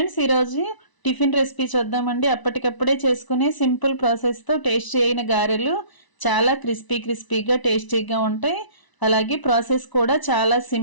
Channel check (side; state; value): right; late; 1.0 ms